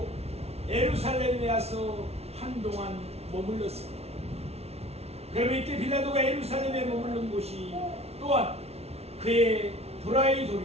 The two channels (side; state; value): left; late; 0.30 ms